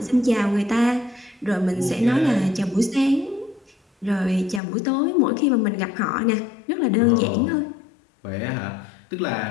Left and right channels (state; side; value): drops out; right; at 4.6 s